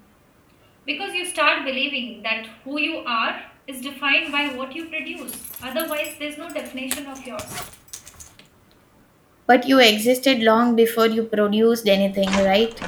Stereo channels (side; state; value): both; identical; correlation 1.00